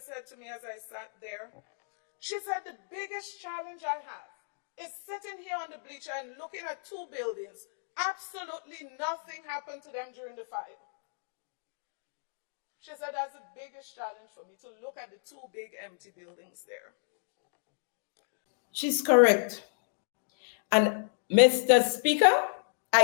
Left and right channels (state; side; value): silent; right; digital silence